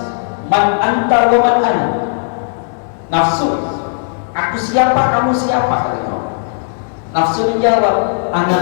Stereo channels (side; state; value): right; silent; digital silence